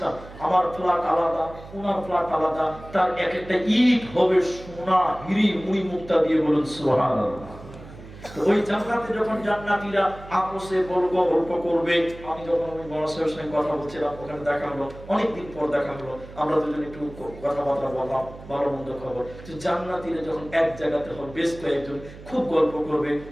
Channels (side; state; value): right; noise; hum, 16 dB below the sound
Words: আমার ফ্ল্যাট আলাদা, ওনার ফ্ল্যাট আলাদা, তার এক একটা ইট হবে সোনা, হিরি, মুড়ি মুক্তা দিয়ে, বলুন সুবহানাল্লাহ। ওই জান্নাতে যখন জান্নাতীরা আপসে গল্প করবে, আমি যখন ওই বড় সাহেবের সঙ্গে কথা বলছিলাম, ওখানে দেখা হলো, অনেকদিন পর দেখা হলো, আমরা দুজন একটু কথাবার্তা বললাম, ভালো মন্দ খবর। তো জান্নাতীরা যখন এক জায়গাতে হবে, বেশ কয়েকজন খুব গল্প করবে,